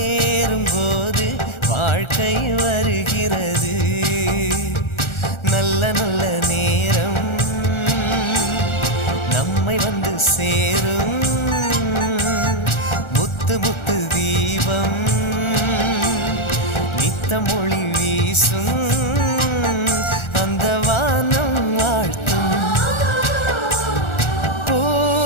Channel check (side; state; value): right; late; 1.4 ms